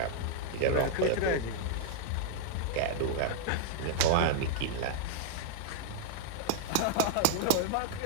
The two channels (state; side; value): different; both; correlation -0.01